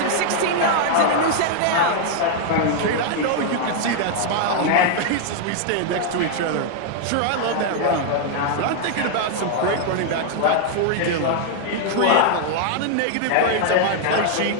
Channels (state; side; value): different; both; correlation 0.00